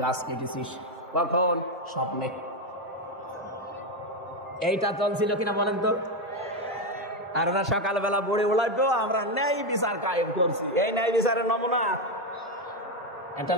কেটেছিস? কখন? স্বপ্নে। এইটা চলছিল কিনা বলেন তো? আর ওরা সকালবেলা বড়ে ওলাইতো, আমরা ন্যায় বিচার কায়েম করছি। এই ন্যায় বিচারের নমুনা একটা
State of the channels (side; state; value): both; normal; correlation 0.09